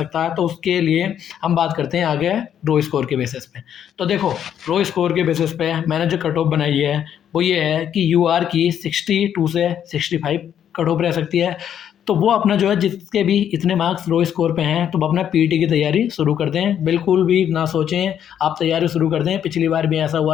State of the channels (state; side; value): quieter; right; 9.5 dB